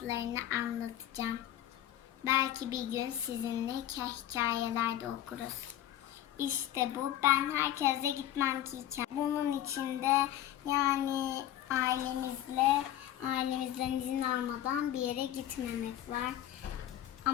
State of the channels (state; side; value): quieter; right; 12.2 dB